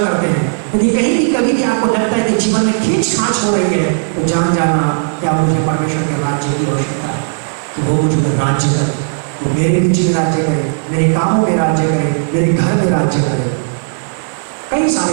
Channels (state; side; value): silent; left; digital silence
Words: हैं, यदि कहीं भी कभी भी आपको लगता है कि जीवन में खींच खांच हो रही है, तो जान जाना क्या मुझे परमेश्वर के राज्य की आवश्यकता है कि वो मुझे राज्य करे, वो मेरे बीच में राज्य करे, मेरे कामों में राज्य करे, मेरे घर में राज्य करे। कई